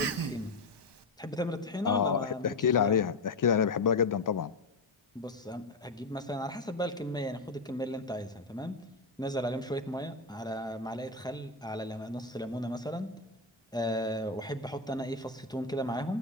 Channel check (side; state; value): right; quieter; 3.5 dB